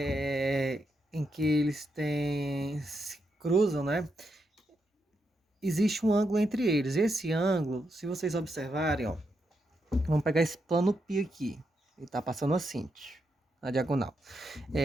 em que eles se cruzam, né? Existe um ângulo entre eles. Esse ângulo, se vocês observarem, ó, vamos pegar esse plano π aqui. Ele está passando assim, na diagonal.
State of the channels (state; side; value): normal; both; correlation 0.82